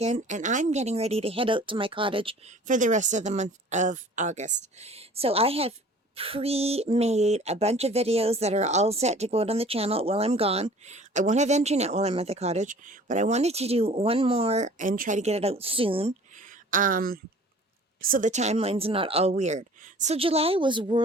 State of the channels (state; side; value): normal; both; correlation 0.48